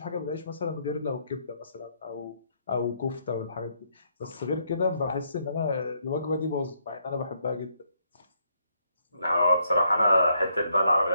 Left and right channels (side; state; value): both; inverted; correlation -0.73